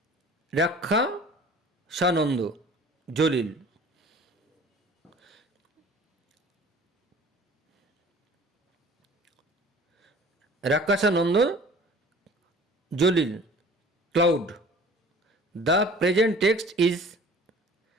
Rakhshanda Jalil. Rakhshanda Jalil, cloud. The present text is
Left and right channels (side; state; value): both; normal; correlation 0.47